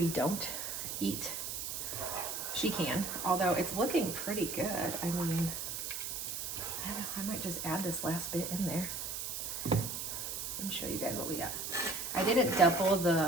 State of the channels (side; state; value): right; noise; hiss, 4 dB below the sound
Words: don't eat, she can. Although it's looking pretty good. I mean, I don't know, I might just add this last bit in there and show you guys what we got. I didn't double